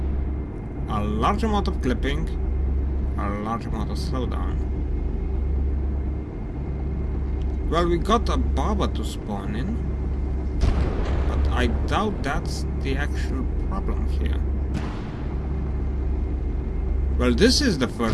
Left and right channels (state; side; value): identical; both; correlation 1.00